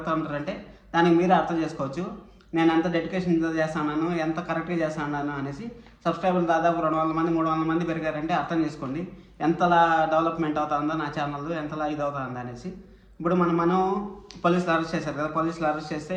ఉంటారంటే దానికి మీరే అర్థం చేసుకోవచ్చు నేను ఎంత డెడికేషన్ చేస్తున్నాను, ఎంత కరెక్ట్గా చేస్తున్నాను అనేసి. సబ్స్క్రైబర్లు దాదాపు 200 మంది 300 మంది పెరిగారంటే అర్థం చేసుకోండి ఎంతలా డెవలప్మెంట్ అవుతుందో నా ఛానల్, ఎంతలా ఇది అవుతుందో అనేసి. ఇప్పుడు మనం పోలీసులు అరెస్ట్ చేశారు కదా, పోలీసులు అరెస్ట్ చేస్తే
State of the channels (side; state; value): both; identical; correlation 1.00